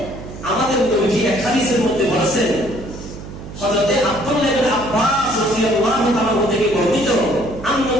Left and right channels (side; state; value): right; noise; hum, 13 dB below the sound